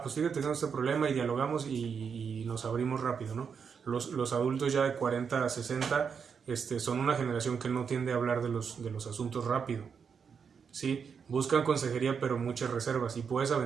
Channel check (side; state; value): left; quieter; 6.4 dB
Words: Pues fíjate, tenemos este problema y dialogamos y nos abrimos rápido, ¿no? Los adultos ya de 40 a 60 son una generación que no tiende a hablar de los asuntos rápido, ¿sí? Buscan consejería, pero muchas reservas, y puedes